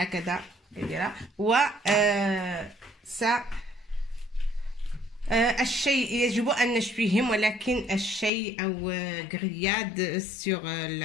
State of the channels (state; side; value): drops out; right; at 8.3 s